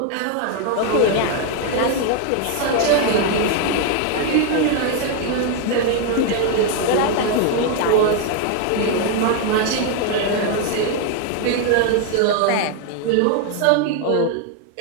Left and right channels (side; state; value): both; different; correlation 0.01